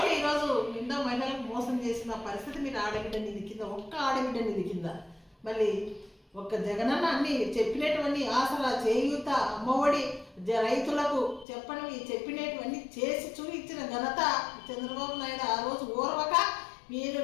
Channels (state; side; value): drops out; right; at 11.5 s